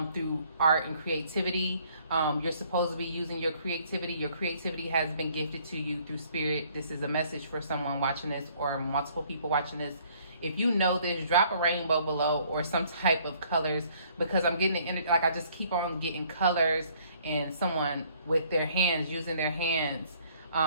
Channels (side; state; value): both; inverted; correlation -0.61